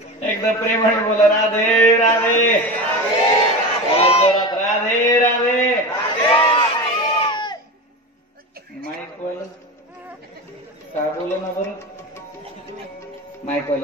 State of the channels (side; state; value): both; normal; correlation 0.26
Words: एकदा प्रेमाने बोला राधे राधे. राधे राधे. माईक वाले काय बोला ना बरं? माईक